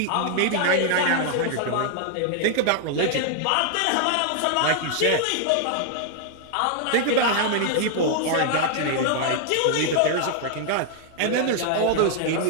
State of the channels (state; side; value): different; both; correlation 0.00